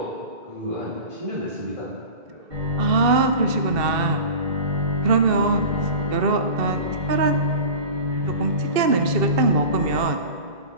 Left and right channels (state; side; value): late; left; 2.6 ms